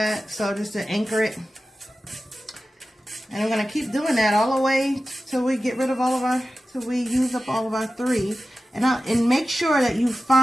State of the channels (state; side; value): normal; both; correlation 0.94